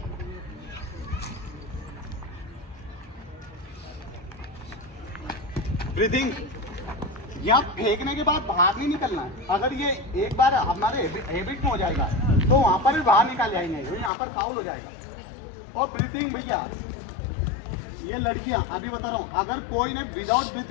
ब्रीथिंग, यहाँ फेंकने के बाद बाहर नहीं निकलना है। अगर ये एक बार हमारे हैबिट में हो जाएगा तो वहां पर भी बाहर निकाल जाएंगे, यहाँ पर फाउल हो जाएगा। और ब्रीथिंग भैया, ये लड़कियां अभी बता रहा हूँ, अगर कोई ने विदाउट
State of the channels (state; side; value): drops out; right; at 14.1 s